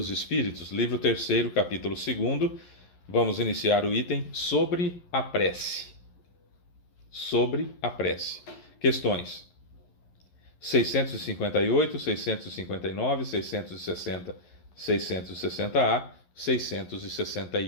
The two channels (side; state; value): right; late; 11 ms